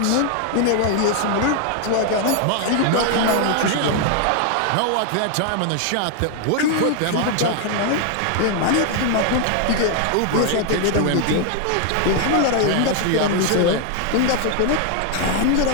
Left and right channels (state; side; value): different; both; correlation 0.00